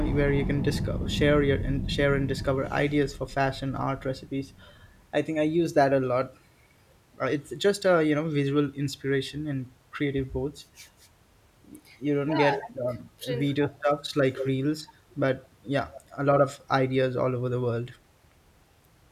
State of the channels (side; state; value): both; identical; correlation 1.00